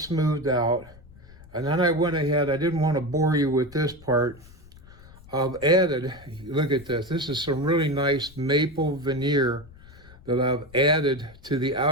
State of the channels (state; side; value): noise; left; rumble, 22 dB below the sound